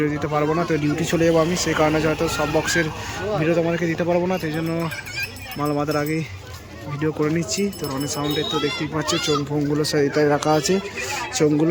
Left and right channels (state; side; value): identical; both; correlation 1.00